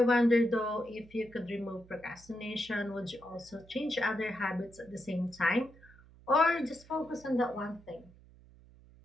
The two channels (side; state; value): right; noise; hum, 24 dB below the sound